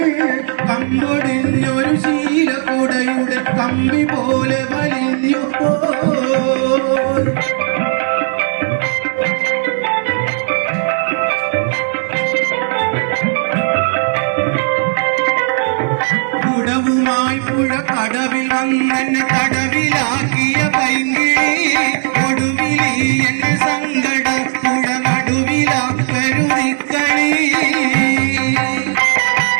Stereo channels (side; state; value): left; silent; 55 dB below the other